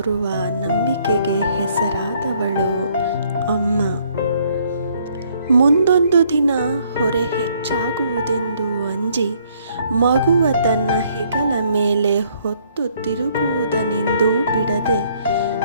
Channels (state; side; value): inverted; both; correlation -0.66